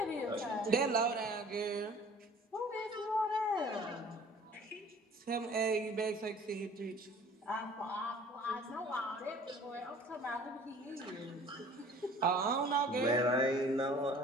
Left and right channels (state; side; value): normal; both; correlation 0.49